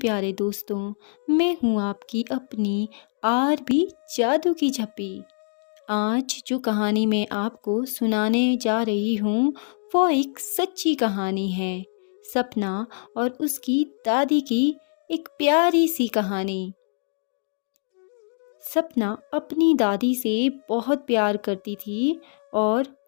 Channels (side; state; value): right; silent; digital silence